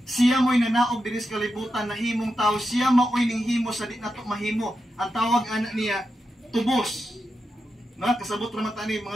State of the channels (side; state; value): both; normal; correlation 0.88